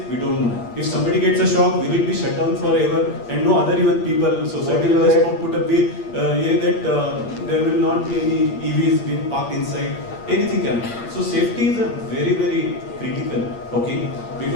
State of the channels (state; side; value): late; right; 8.6 ms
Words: We don't know. If somebody gets a shock, will it be shut down forever? And no other even people, society will just put a bill that there will not be any EVs being parked inside. Anything can happen. So safety is a very, very critical, okay?